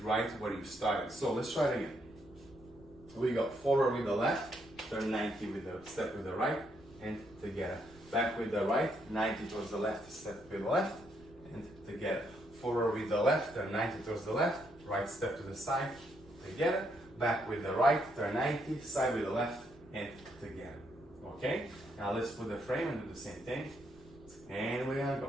right where you started. So let's try it again. We go forward with the left, turn 90 with the step with the right, and together. Back with the right, 90 towards the left, step with the left, and together. Forward with the left, turn 90 towards the left, right step to the side, together. Back with the right, turn 90, side with the left, and together. Okay? Now let's put the frame and do the same thing. And we're gonna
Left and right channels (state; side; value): noise; right; rumble, 24 dB below the sound